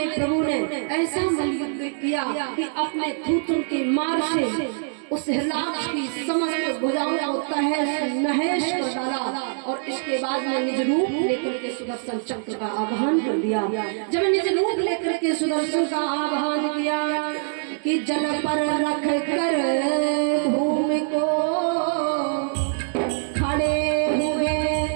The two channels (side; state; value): left; silent; digital silence